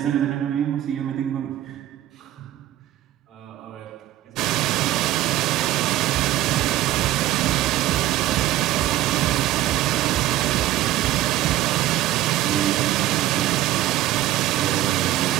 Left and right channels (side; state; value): left; quieter; 14.2 dB